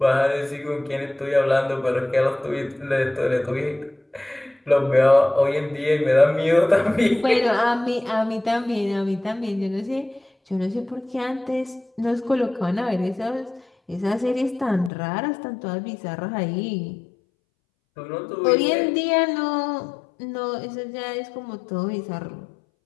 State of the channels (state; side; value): drops out; right; at 14.9 s